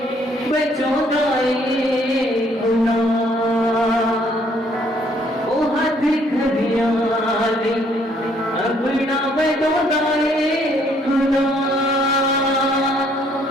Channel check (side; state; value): both; normal; correlation 0.65